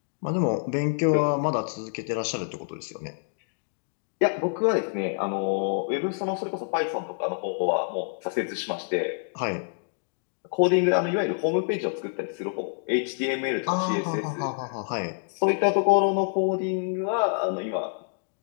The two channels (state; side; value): silent; right; digital silence